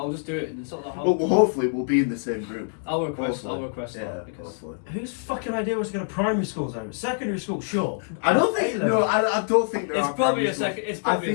I'll just do it, and it's not that hard. Well, hopefully we'll be in the same group. I'll request Hopefully. that because hopefully. Whose fucking idea was to go to primary schools though? Secondary school, sure. I don't think. A-level. No, I don't think there it's are probably primary a schools. second. It's probably a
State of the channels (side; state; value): right; silent; digital silence